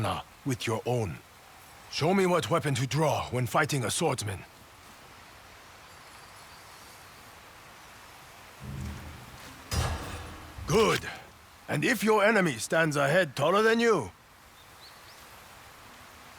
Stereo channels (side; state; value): both; identical; correlation 1.00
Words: with your own. Show me what weapon to draw when fighting a swordsman. Good. And if your enemy stands a head taller than you,